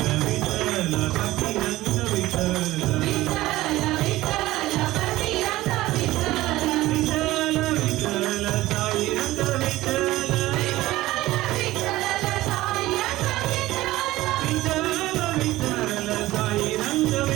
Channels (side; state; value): left; quieter; 17.2 dB